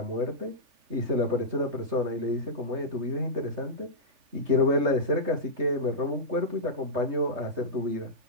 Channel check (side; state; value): left; late; 3.2 ms